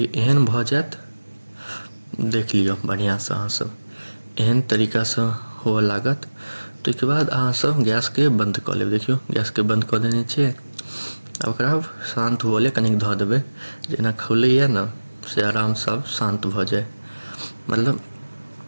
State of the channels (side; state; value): both; inverted; correlation -1.00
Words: एहन भऽ जायत, देख लियौ बढ़िआँसँ अहाँ सब, एहन तरीकासँ हुअ लागत। ताहिके बाद अहाँ सब गैसके बंद कऽ लेब। देखियौ गैसके बंद कऽ देने छियै, आब ओकरा शान्त हुअ लेल कनिक धऽ देबै, जेना खौलैए ने से आरामसँ शान्त भऽ जाए, मतलब